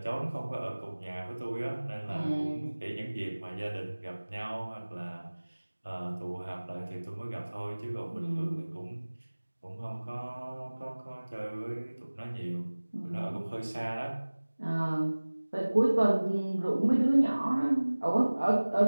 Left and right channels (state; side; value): inverted; both; correlation -1.00